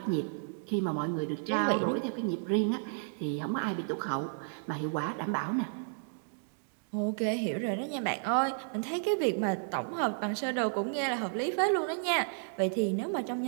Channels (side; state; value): left; silent; digital silence